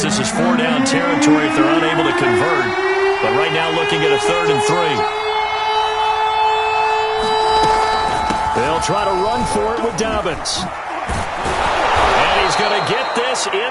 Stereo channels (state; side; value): identical; both; correlation 1.00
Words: this is 4-down territory if they're unable to convert. But right now looking at a 3rd and 3. They'll try to run for it with Dobbins. And He's going to get this